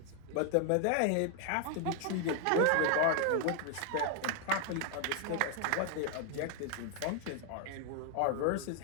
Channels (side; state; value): both; different; correlation 0.00